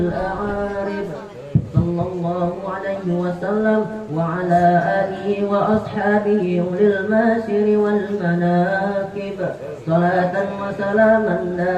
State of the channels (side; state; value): both; identical; correlation 1.00